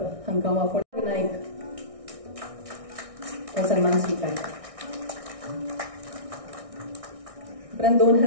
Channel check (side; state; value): left; late; 1.6 ms